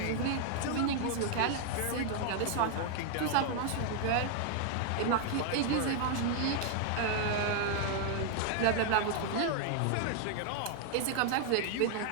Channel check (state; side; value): different; both; correlation 0.00